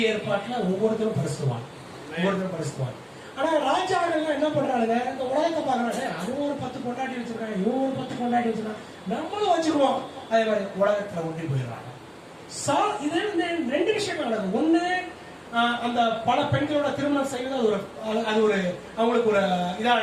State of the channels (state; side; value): identical; both; correlation 1.00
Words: ஏற்பாட்டுல ஒவ்வொருத்தரும் பரிசுவான். ஆனா ராஜாக்கள் என்ன பண்றாங்க, இந்த உலகத்தை பாக்குறாங்க, அது ஒரு 10 கொண்டாட்டி வச்சிருக்காங்க, இவங்க ஒரு 10 கொண்டாட்டி வச்சிருக்காங்க, நம்மளும் வச்சுக்குவோம். அதே மாதிரி உலகத்துல ஒன்றி போயிடுறாங்க. இது 2 விஷயங்கள் நடக்குது. ஒண்ணு, அந்த பல பெண்களோட திருமணம் செய்வது அது ஒரு அவங்களுக்கு ஒரு இதா